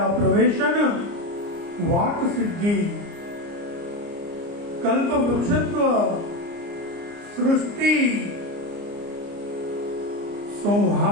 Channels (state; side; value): late; left; 29 ms